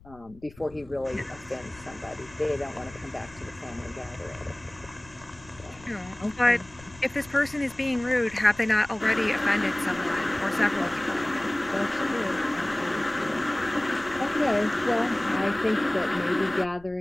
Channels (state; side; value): noise; left; rumble, 23 dB below the sound